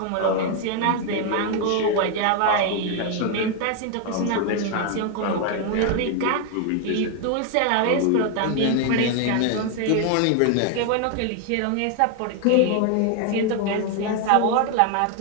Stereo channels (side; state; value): both; different; correlation 0.00